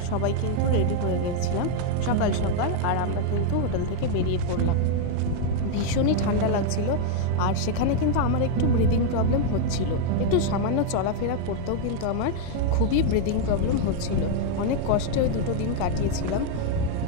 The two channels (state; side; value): different; both; correlation 0.00